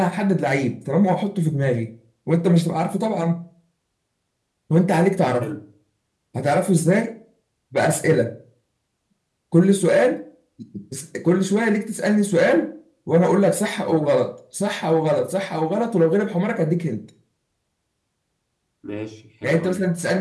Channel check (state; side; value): identical; both; correlation 1.00